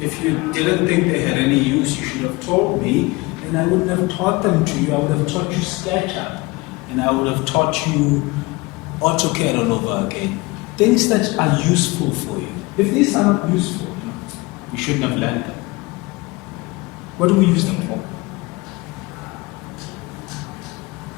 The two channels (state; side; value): quieter; right; 23.3 dB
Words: if you didn't think they had any use, you should have told me, and I wouldn't have taught them to you. I would have taught you SketchUp, and I would have taught you AutoCAD all over again. Things that are useful for you. If these are not useful, you shouldn't have learned them. What do we use them for?